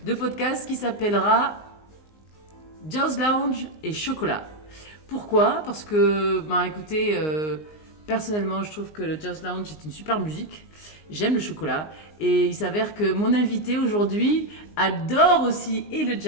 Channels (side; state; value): right; late; 19 ms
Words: de podcast qui s'appellera Jazz Lounge et chocolat. Pourquoi ? Parce que, écoutez, personnellement, je trouve que le Jazz Lounge est une super musique. J'aime le chocolat. Et il s'avère que mon invité aujourd'hui adore aussi et le